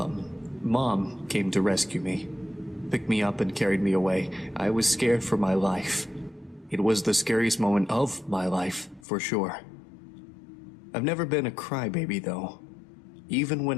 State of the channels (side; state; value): right; drops out; at 9.0 s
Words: Mom came to rescue me. Picked me up and carried me away. I was scared for my life. It was the scariest moment of my life, for sure. I've never been a crybaby, though. Even